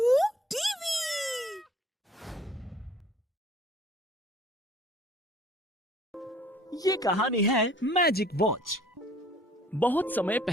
टीवी। ये कहानी है मैजिक वॉच। बहुत समय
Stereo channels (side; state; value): both; normal; correlation 0.55